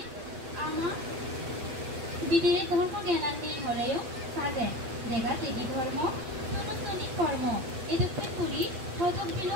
আমার বিদিরে ধর্ম জ্ঞান নেই হলেও সাজে জায়গা থেকে ধর্ম সনাতনী কর্ম এদুকে পুরি হজক দিল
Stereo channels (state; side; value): late; left; 8.8 ms